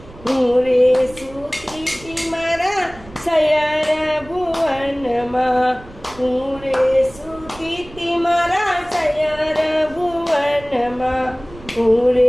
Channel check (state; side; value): noise; right; rumble, 19 dB below the sound